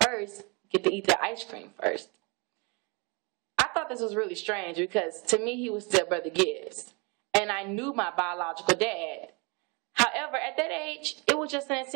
first, get to eat the ice cream first. I thought this was really strange because to me he was still Brother Gibbs, and I knew my biological dad. However, at that age, it was just an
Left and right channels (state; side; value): quieter; left; 30.9 dB